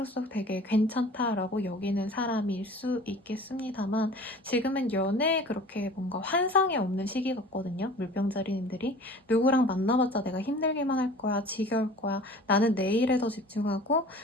되게 괜찮다라고 여기는 사람일 수 있겠습니다만 지금은 연애에 그렇게 뭔가 환상이 없는 시기 같거든요. 물병자리님들이 누구랑 만나봤자 내가 힘들기만 할 거야, 지겨울 거야, 나는 내 일에 더 집중하고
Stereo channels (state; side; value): normal; both; correlation 0.44